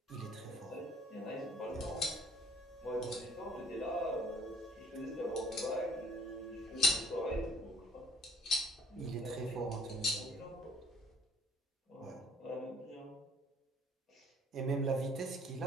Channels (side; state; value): both; normal; correlation 0.58